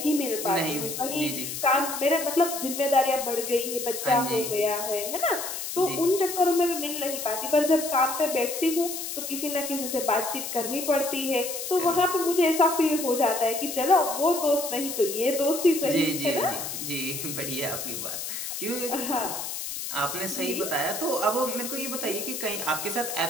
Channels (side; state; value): left; noise; hiss, 5 dB below the sound